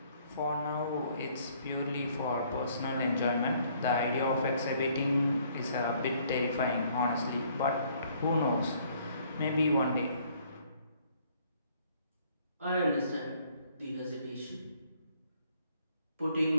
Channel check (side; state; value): both; inverted; correlation -0.63